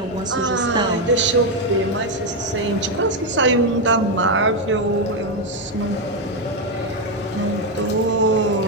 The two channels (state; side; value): normal; both; correlation 0.05